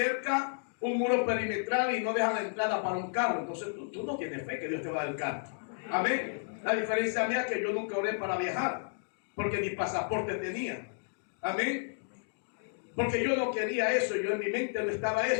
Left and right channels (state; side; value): silent; right; digital silence